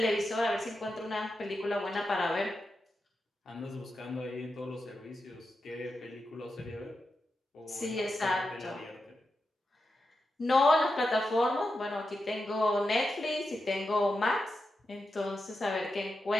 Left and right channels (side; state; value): both; normal; correlation 0.88